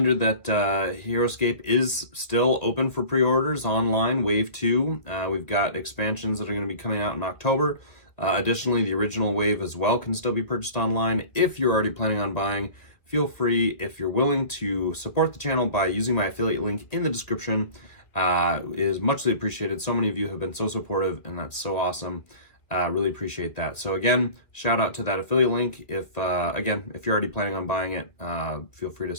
that Heroscape is still open for pre-orders online, Wave 2. We've got expansions that are going to be coming out in October. Additionally, the original wave as well can still be purchased online. If you're already planning on buying, feel free, if you're willing, to support the channel by using my affiliate link in the description. Is muchly appreciated. So many of you have been so supportive, and that's so awesome. Really appreciate that. So again, shout out to that affiliate link. If you're already planning on buying it, feel free to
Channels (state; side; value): late; right; 2.1 ms